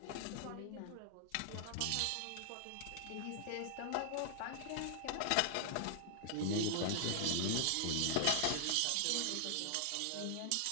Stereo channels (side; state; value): both; different; correlation 0.00